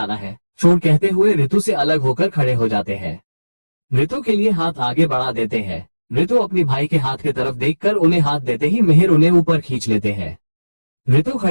है। छोड़, कहते हुए ऋतु से अलग होकर खड़े हो जाते हैं। ऋतु के लिए हाथ आगे बढ़ा देते हैं। ऋतु अपनी भाई के हाथ की तरफ देखकर उन्हें हाथ देते ही मिहिर उन्हें ऊपर खींच लेते हैं। ऋतु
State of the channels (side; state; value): both; inverted; correlation -1.00